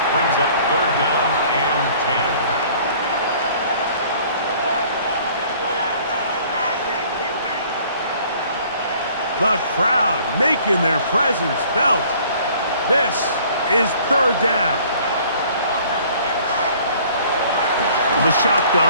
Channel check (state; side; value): inverted; both; correlation -0.54